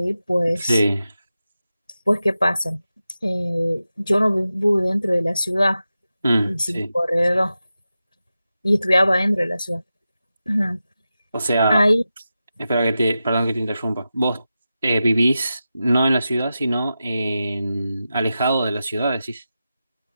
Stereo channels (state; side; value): inverted; both; correlation -0.92